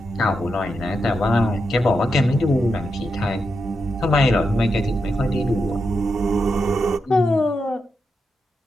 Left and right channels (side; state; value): both; normal; correlation 0.85